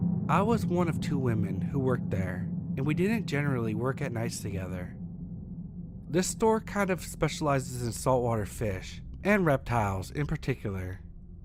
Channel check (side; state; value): both; identical; correlation 1.00